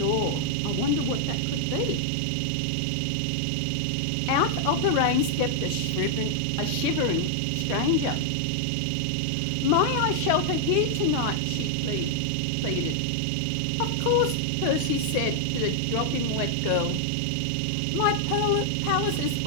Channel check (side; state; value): both; different; correlation 0.00